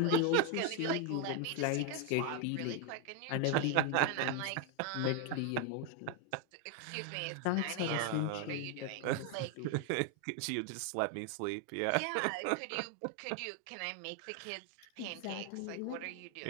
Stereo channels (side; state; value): both; different; correlation 0.00